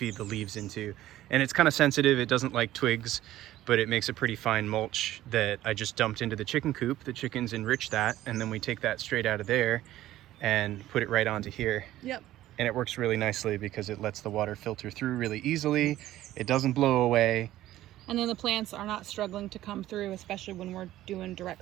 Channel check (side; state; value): left; quieter; 14.4 dB